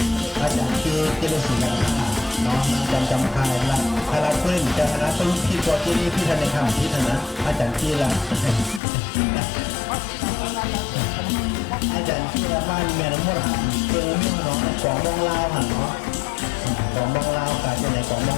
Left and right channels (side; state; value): right; drops out; at 8.8 s